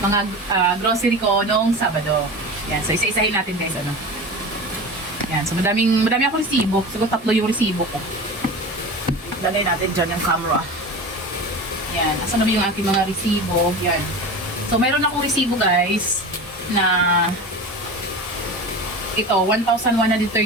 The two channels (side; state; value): both; normal; correlation 0.30